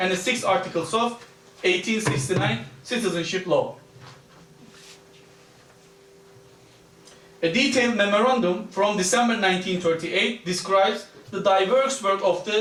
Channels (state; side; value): identical; both; correlation 1.00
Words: the 6th articles of 1869 citizenship law. A detailed memorandum from December 1938 describes the diverse work of